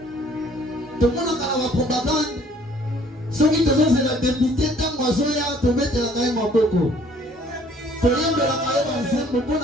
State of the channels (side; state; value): both; normal; correlation 0.58